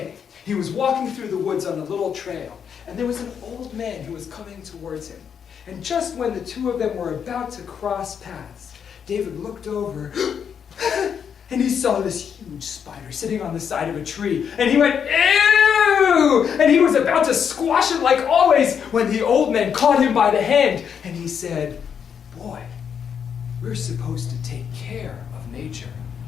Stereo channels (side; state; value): right; quieter; 7.5 dB